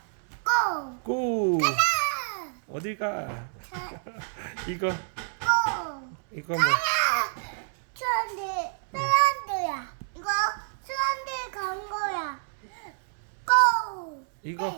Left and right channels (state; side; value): silent; left; 59 dB below the other